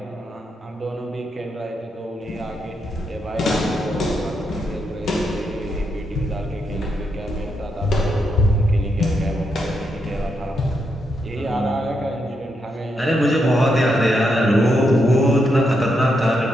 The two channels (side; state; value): both; normal; correlation 0.81